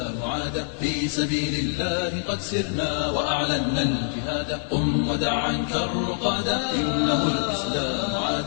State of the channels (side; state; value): right; silent; 62 dB below the other